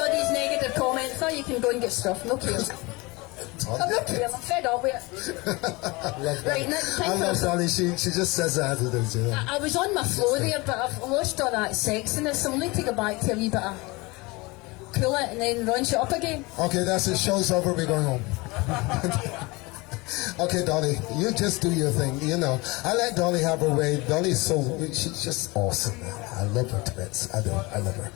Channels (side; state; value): right; quieter; 24.4 dB